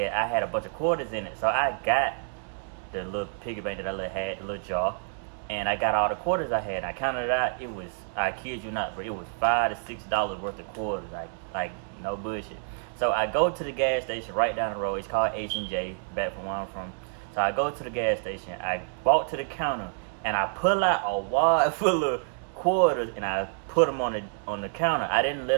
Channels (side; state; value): left; silent; digital silence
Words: I had a bunch of quarters in it. So I got the little piggy bank that I had, the little jar, and I got all the quarters I had. And I counted it out. It was, I kid you not, but it was $5 to $6 worth of quarters. Like no bullshit. So I go to the gas station right down the road. It's called H&J, back from where I'm from. So I go to the gas station. I walk to the counter, and I pull out a wad full of quarters, and I put them on the counter. I didn't let